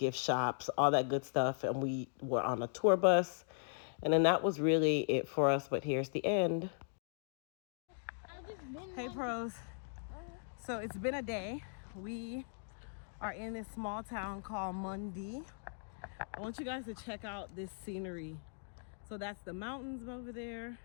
shops, all that good stuff. And we were on a tour bus. And then that was really it for us. But here's the end. Hey, pros. So it's been a day. We are in this small town called Mundi. I want you guys to check out this scenery. So that's the mountains over there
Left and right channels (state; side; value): silent; right; digital silence